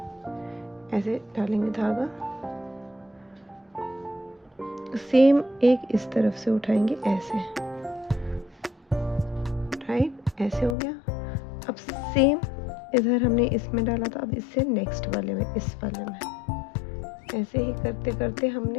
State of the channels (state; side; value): drops out; right; at 10.8 s